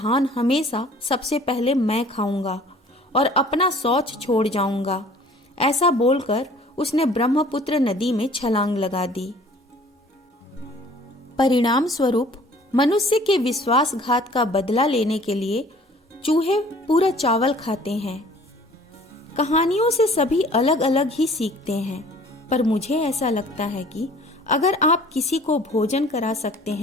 हमेशा सबसे पहले मैं खाऊंगा और अपना शौच छोड़ जाऊंगा। ऐसा बोलकर उसने ब्रह्मपुत्र नदी में छलांग लगा दी। परिणाम स्वरूप मनुष्य के विश्वासघात का बदला लेने के लिए चूहे पूरा चावल खाते हैं। कहानियों से सभी अलग अलग ही सीखते हैं, पर मुझे ऐसा लगता है कि अगर आप किसी को भोजन करा सकते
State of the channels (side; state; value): both; normal; correlation 0.51